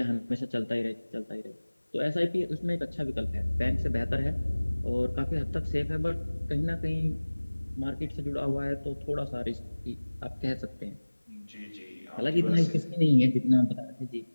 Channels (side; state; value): both; inverted; correlation -1.00